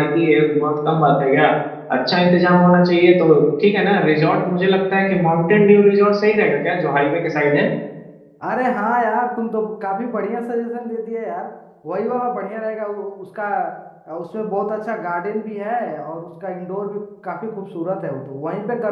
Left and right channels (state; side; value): identical; both; correlation 1.00